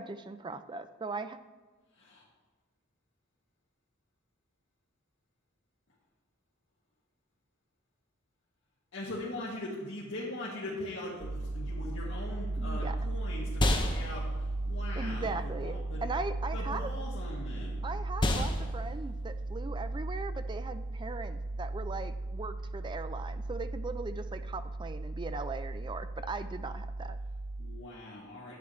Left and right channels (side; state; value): both; normal; correlation 0.72